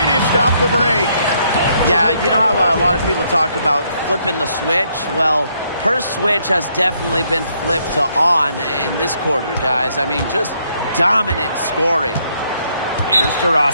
off the break. Yeah, you know how a lot of people talk about flipping the switch? Well, her switch has definitely been flipped to on in this quarter, guys. I mean, just dominant scoring. Here's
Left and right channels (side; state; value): both; inverted; correlation -0.72